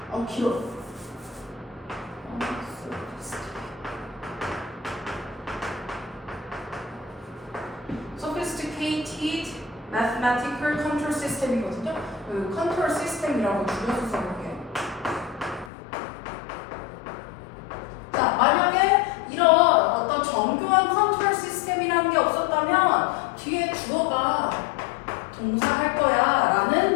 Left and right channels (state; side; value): drops out; right; at 15.7 s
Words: 길어. sophisticated mathematical control system이거든요. 그 컨트롤 시스템이라고 줄여서 써볼게요. 자, 만약에 이런 어떤 정교한 컨트롤 시스템이라는 게 없었다면 뒤에 주어가 동사할 거야 라는